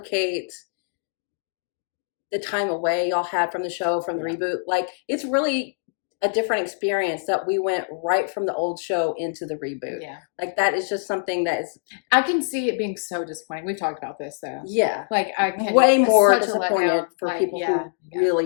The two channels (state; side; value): silent; right; digital silence